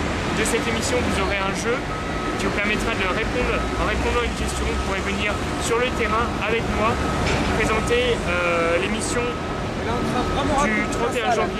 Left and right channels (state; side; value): identical; both; correlation 1.00